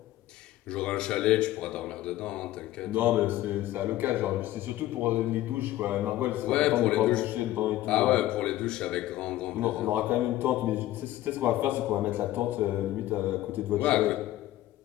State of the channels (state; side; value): quieter; right; 15.1 dB